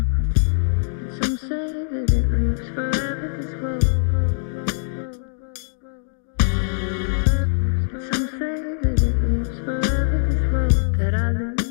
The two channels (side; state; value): right; silent; digital silence